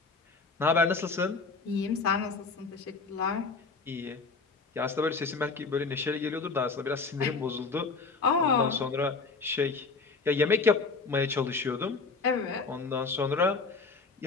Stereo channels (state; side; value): quieter; right; 4.3 dB